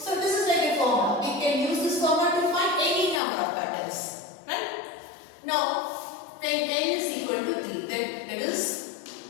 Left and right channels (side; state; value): right; drops out; at 3.2 s